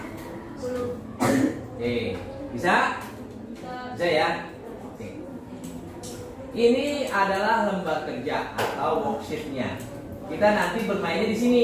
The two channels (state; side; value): identical; both; correlation 1.00